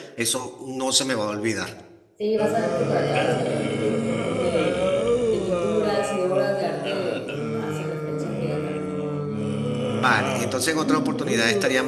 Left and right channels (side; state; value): both; identical; correlation 1.00